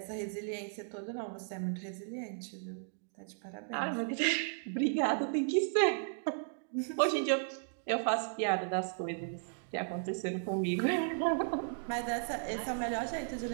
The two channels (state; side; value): silent; left; digital silence